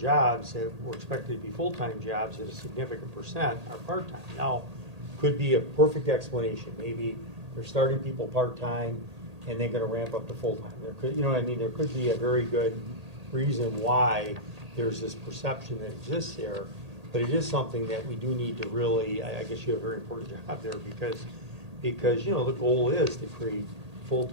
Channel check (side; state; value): left; late; 1.8 ms